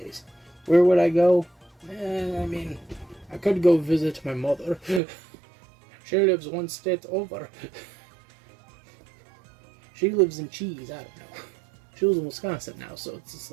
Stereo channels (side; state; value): left; drops out; at 5.0 s